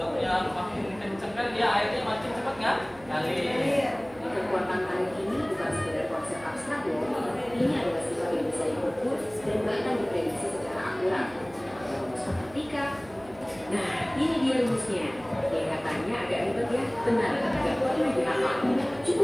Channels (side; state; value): right; noise; hum, 22 dB below the sound